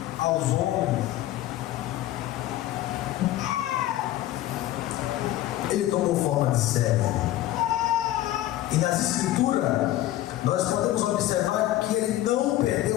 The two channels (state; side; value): quieter; right; 14.4 dB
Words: aos homens. Ele tomou forma de servo. E nas Escrituras, nós podemos observar que ele não